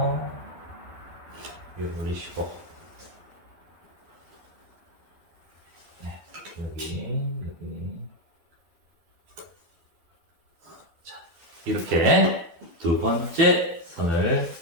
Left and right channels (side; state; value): left; late; 12 ms